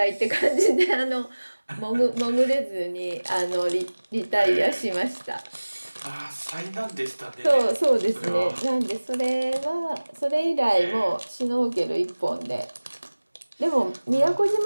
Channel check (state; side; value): inverted; both; correlation -1.00